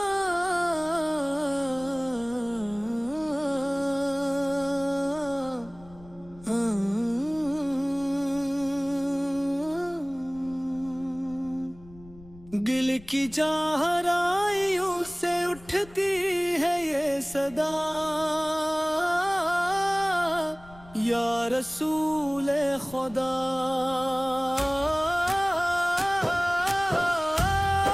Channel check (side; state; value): left; noise; rumble, 22 dB below the sound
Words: دل کی چہرائیوں سے اٹھتی ہے یہ صدا یا رسول خدا